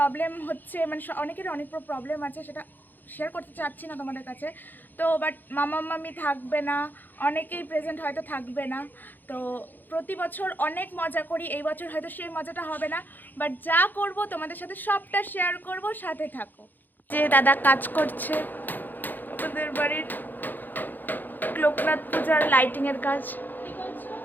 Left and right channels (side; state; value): right; late; 0.087 ms